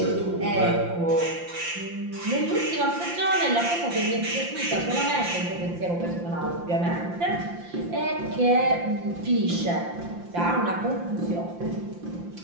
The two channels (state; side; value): late; left; 5.8 ms